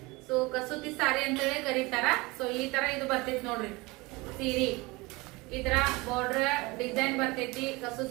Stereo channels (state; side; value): quieter; left; 23.8 dB